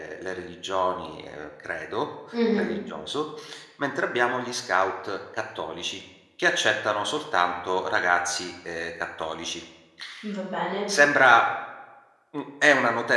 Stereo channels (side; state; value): both; identical; correlation 1.00